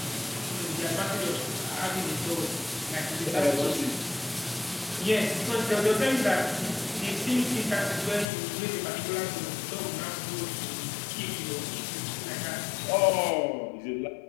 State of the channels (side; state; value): right; drops out; at 8.2 s